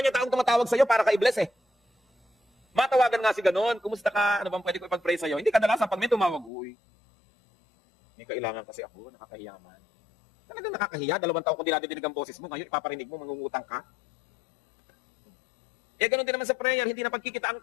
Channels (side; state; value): right; drops out; at 6.5 s